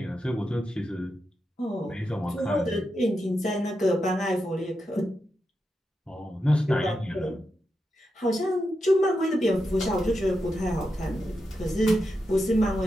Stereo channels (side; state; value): both; normal; correlation 0.87